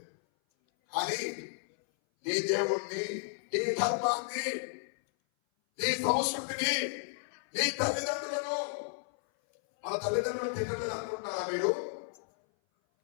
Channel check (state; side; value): silent; right; 56 dB below the other